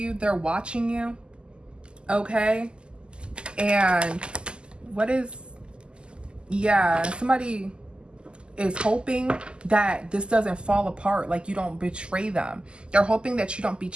They're watching you. Okay, and what is, yeah, somebody is hoping that this doesn't fall apart, like you don't betray them. They're hoping that you don't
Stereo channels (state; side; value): late; left; 0.049 ms